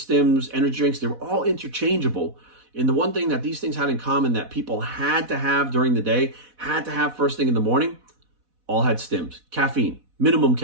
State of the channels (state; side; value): late; left; 4.1 ms